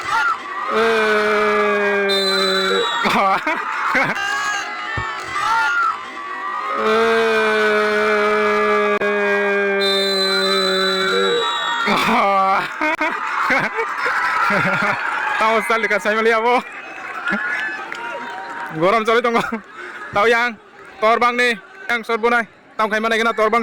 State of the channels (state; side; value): identical; both; correlation 1.00